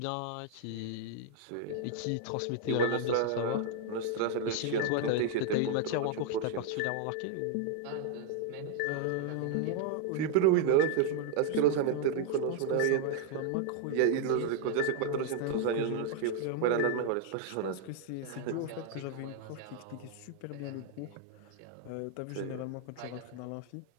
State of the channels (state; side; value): different; both; correlation 0.00